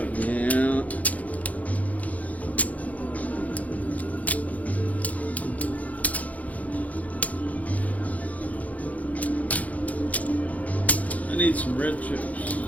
Yeah. I need some red chips.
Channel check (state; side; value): late; right; 0.071 ms